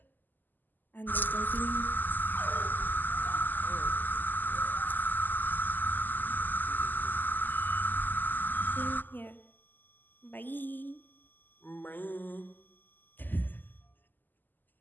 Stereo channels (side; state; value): right; late; 0.088 ms